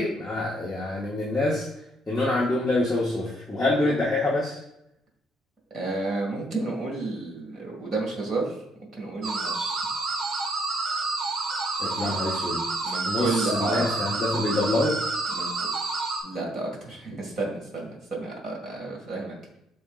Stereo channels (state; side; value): normal; both; correlation 0.69